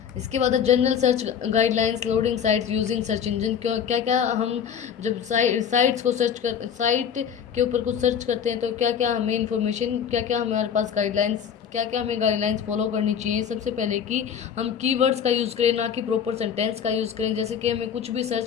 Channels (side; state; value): right; quieter; 8.0 dB